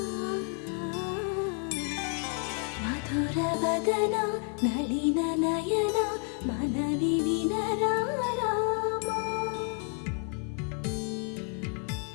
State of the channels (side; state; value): right; quieter; 38.1 dB